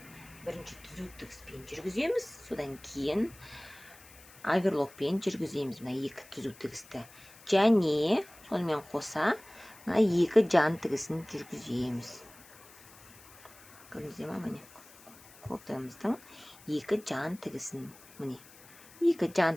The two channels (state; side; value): noise; left; hiss, 22 dB below the sound